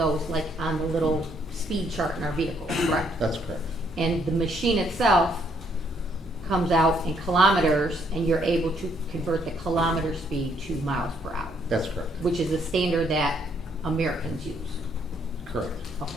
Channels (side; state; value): both; normal; correlation 0.69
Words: like on the little speed chart in our vehicle, correct? That's correct. And the machine itself comes out in kilometers, and you're able to convert the kilometer speed to miles per hour, That's correct. which is the standard that Americans use. Correct.